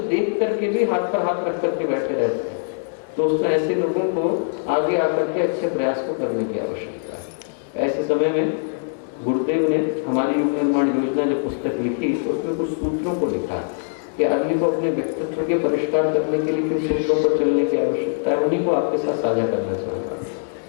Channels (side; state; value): right; silent; digital silence